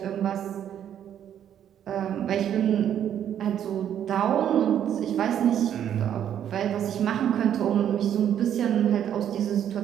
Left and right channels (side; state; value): left; quieter; 9.8 dB